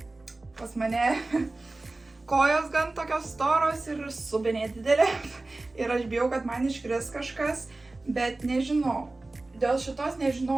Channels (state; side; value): quieter; left; 3.1 dB